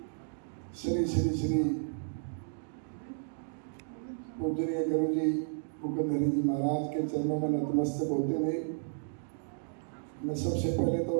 श्री श्री श्री पूजनीय गुरु जी मुकुंद हरि जी महाराज के चरणों में नतमस्तक होते हुए मैं सबसे पहले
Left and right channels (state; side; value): silent; left; digital silence